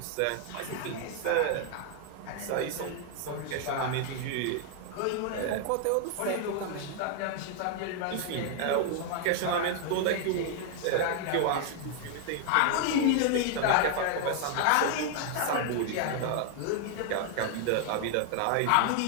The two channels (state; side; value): different; both; correlation 0.00